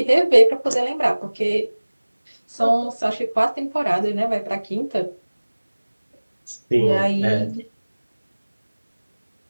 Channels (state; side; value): inverted; both; correlation -1.00